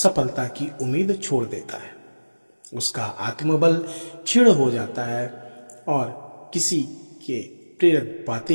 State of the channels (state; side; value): inverted; both; correlation -1.00